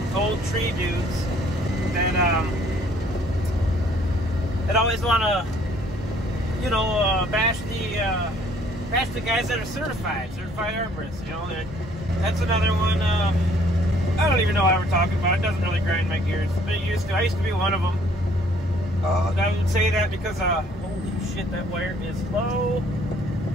old tree dudes that always want to, you know, bash the guys that are certified arborists. You know, that's another one. I don't even know what we're talking about. It doesn't really grind my gears, but it used to. I used to be one of them. I would say that because, holy shit, that wire is low.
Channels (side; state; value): both; normal; correlation 0.61